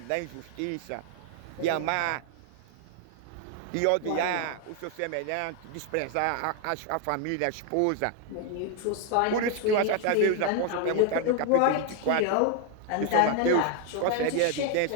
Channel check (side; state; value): both; different; correlation 0.00